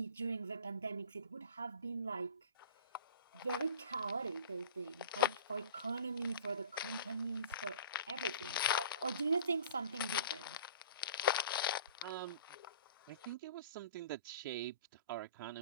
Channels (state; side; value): inverted; both; correlation -0.42